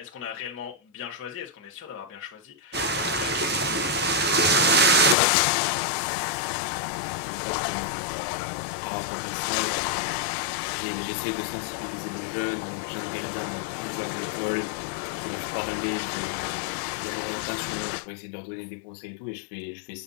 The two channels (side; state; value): right; drops out; at 5.2 s